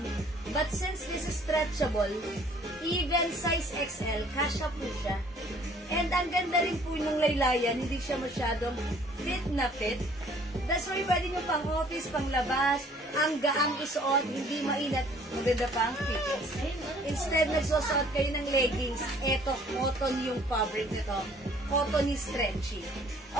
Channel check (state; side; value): normal; both; correlation 0.57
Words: But since this is stretchable, even size XL, kasha po siya. And ang ganda rin po ng laylayan, hindi siya masyadong fit na fit. That's why pwede nyo pang office, pang labas, ang gaang isuot, hindi mainat. Maganda pa ang fitness. Instead, nagsusuot kayo ng leggings, eto, cotton yung fabric nito. Cottony stretchy.